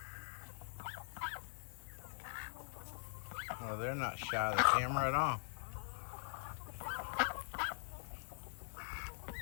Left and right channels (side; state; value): right; silent; digital silence